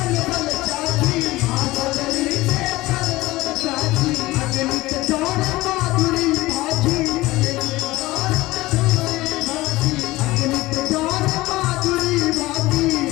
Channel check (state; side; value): quieter; right; 18.9 dB